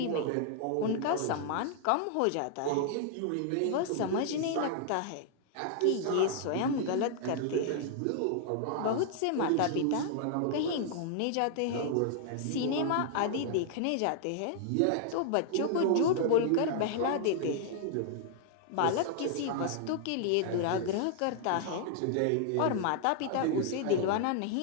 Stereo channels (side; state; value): both; different; correlation -0.01